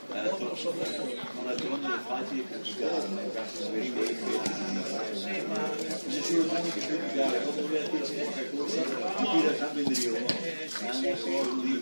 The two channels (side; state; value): both; inverted; correlation -1.00